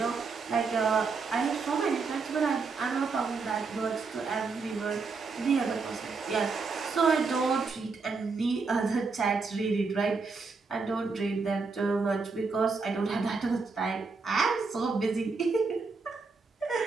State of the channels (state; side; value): quieter; left; 4.5 dB